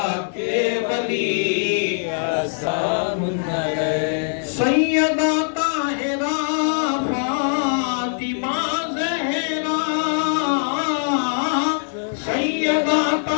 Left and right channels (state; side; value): silent; right; digital silence